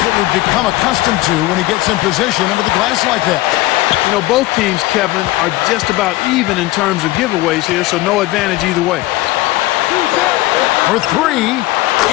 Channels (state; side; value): quieter; right; 18.0 dB